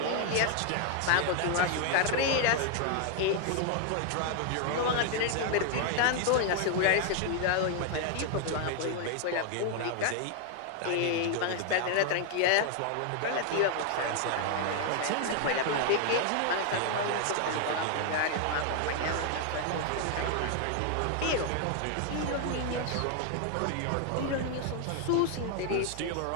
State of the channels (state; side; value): different; both; correlation 0.00